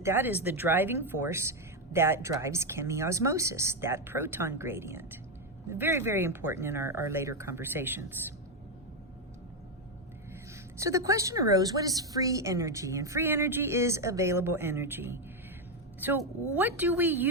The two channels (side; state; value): both; normal; correlation 0.06